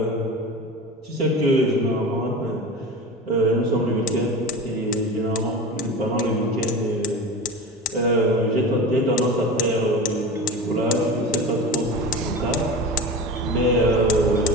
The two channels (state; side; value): normal; both; correlation 0.31